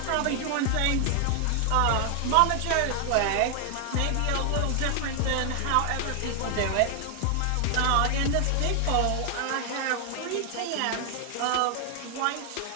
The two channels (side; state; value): both; different; correlation 0.00